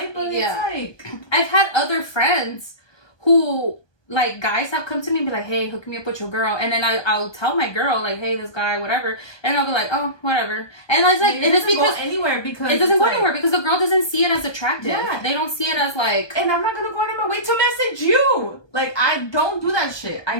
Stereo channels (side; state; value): right; late; 1.2 ms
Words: other friends who like guys have come to me and be like, hey, hook me up with your girl, and then I'll tell my girl like, hey, this guy, whatever, and I'll be like, oh, whatever, and it's like it is because it doesn't go anywhere because the girl doesn't see it as attractive. Yeah. They don't see it as like, and I'm not gonna go out of my way to message you. Like I don't do that shit. I